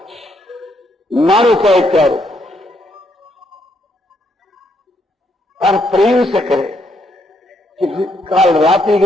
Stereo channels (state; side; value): normal; both; correlation 0.74